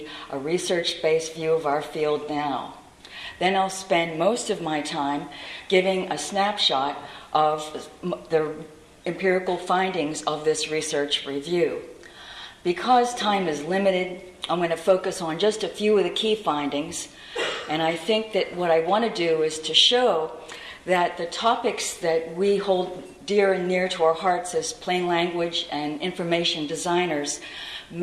a research-based view of our field now. Then I'll spend most of my time giving a snapshot of the empirical findings of this research review. Because time is limited, I'm going to focus on just a few of the key findings, and I think that what I want to do is to show that the topics that we hold dear and near to our hearts as plain language and information designers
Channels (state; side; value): identical; both; correlation 1.00